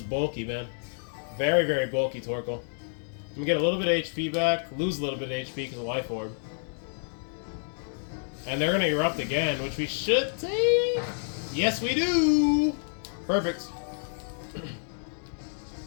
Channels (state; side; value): silent; right; digital silence